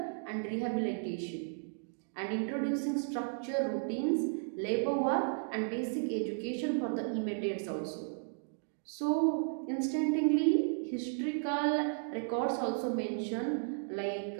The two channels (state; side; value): silent; left; digital silence